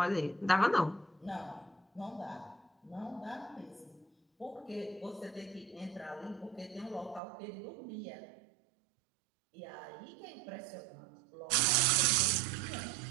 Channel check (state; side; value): drops out; left; at 7.2 s